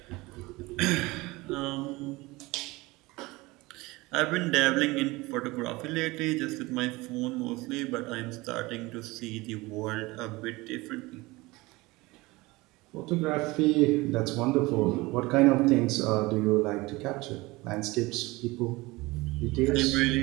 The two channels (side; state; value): left; quieter; 21.8 dB